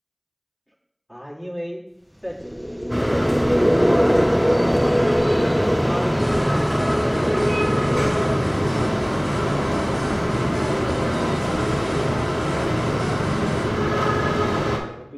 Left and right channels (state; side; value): identical; both; correlation 1.00